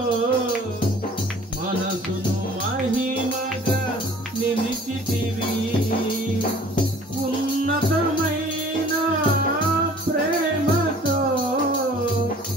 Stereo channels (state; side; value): normal; both; correlation 0.50